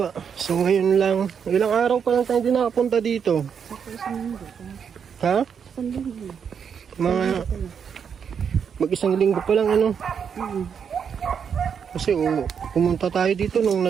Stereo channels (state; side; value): quieter; left; 7.2 dB